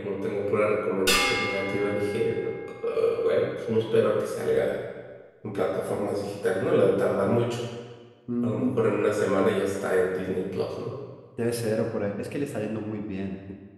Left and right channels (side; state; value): both; identical; correlation 1.00